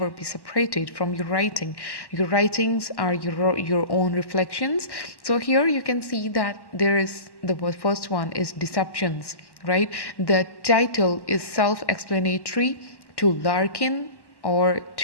be separated from your writing. Your writings are your own reflections. So here you can see that there is the first one is Deceptions, right? The title is self-explanatory to Larkin, or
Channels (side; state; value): right; late; 1.1 ms